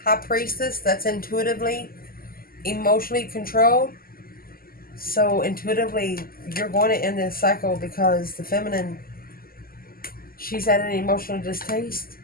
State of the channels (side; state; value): right; late; 0.42 ms